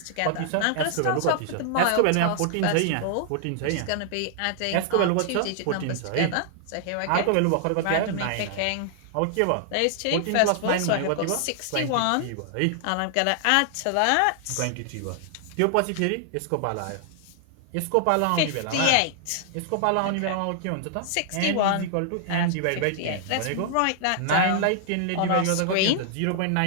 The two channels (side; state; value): both; different; correlation 0.00